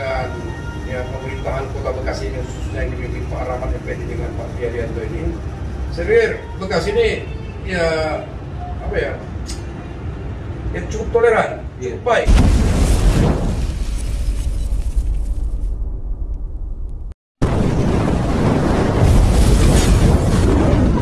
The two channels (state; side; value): identical; both; correlation 1.00